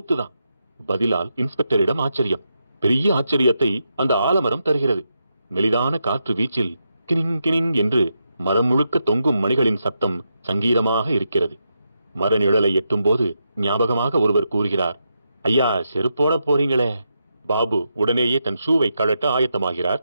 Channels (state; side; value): inverted; both; correlation -0.84